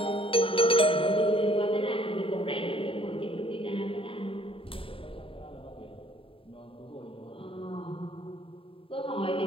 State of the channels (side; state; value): right; late; 0.26 ms